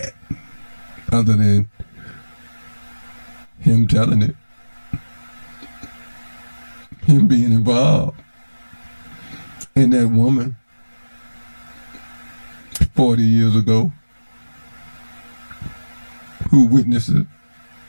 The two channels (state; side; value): inverted; both; correlation -1.00